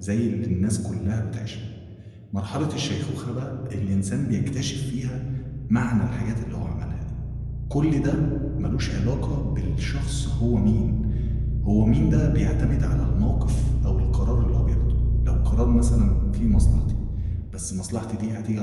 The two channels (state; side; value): identical; both; correlation 1.00